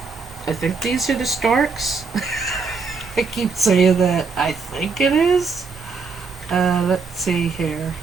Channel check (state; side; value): quieter; left; 4.7 dB